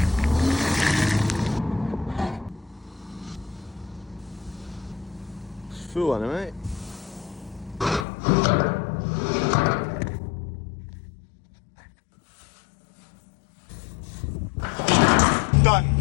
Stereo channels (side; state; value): right; drops out; at 8.1 s